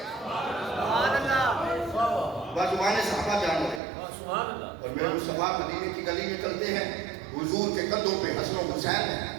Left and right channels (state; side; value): drops out; left; at 3.8 s